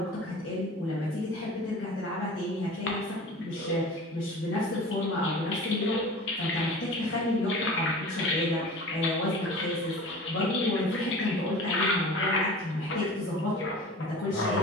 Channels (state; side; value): normal; both; correlation 0.39